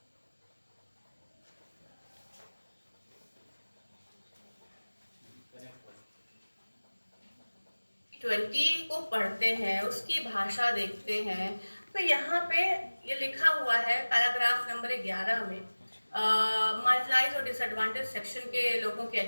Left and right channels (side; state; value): both; inverted; correlation -1.00